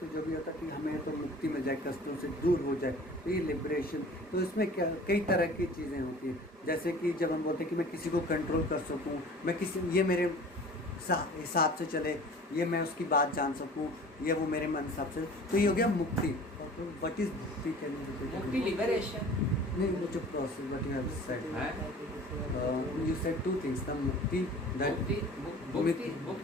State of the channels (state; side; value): normal; both; correlation 0.44